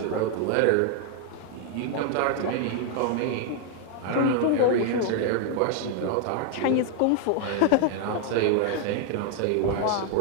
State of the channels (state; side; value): different; both; correlation 0.00